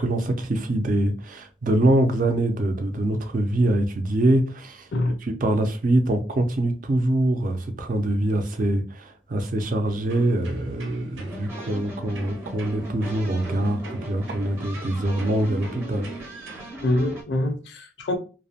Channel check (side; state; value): both; normal; correlation 0.81